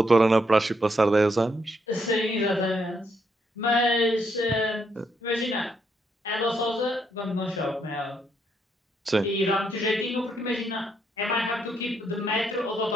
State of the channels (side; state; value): both; normal; correlation 0.76